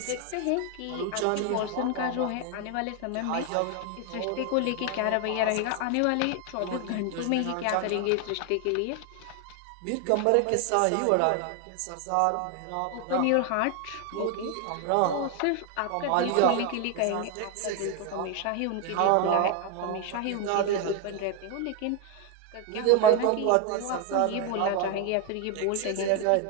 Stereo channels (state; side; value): different; both; correlation 0.01